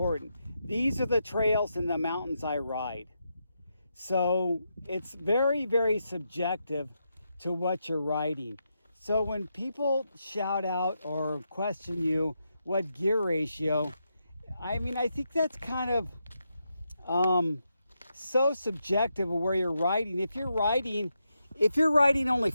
These are the trails in the mountains I ride. So it's very, very subjective to what you're riding. So when people shout out or question you what gear ratio, I think that's kind of so subjective of where you're riding. If you're riding only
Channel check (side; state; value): both; inverted; correlation -0.84